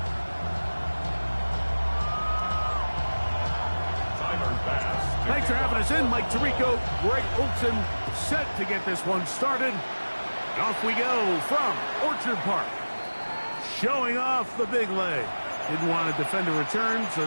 Thanks for having us in, Mike Tirico, Greg Olson, set to get this one started. And off we go from Orchard Park. Showing off the big leg. Didn't want to defend a return, so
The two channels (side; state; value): both; inverted; correlation -1.00